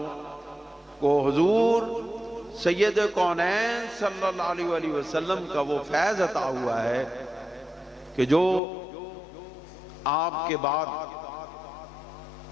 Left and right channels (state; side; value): drops out; right; at 8.6 s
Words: کو حضور سید کونین صلی اللہ علیہ وآلہ وسلم کا وہ فیض عطا ہوا ہے کہ جو آپ کے بعد